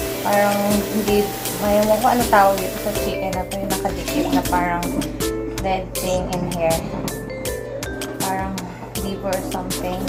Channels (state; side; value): identical; both; correlation 1.00